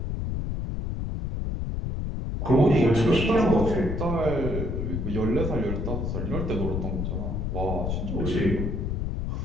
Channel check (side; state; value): left; noise; rumble, 2 dB below the sound